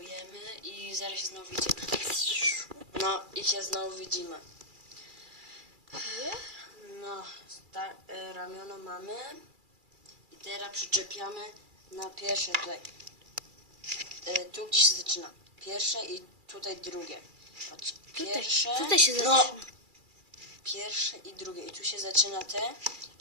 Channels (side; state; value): left; late; 2.3 ms